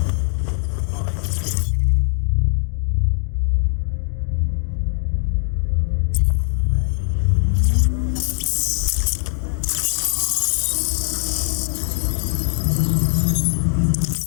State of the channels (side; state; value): right; silent; digital silence